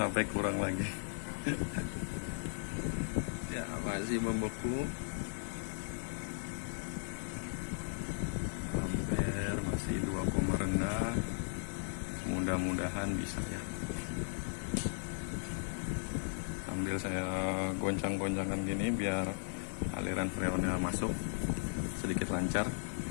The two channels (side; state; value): right; silent; 53 dB below the other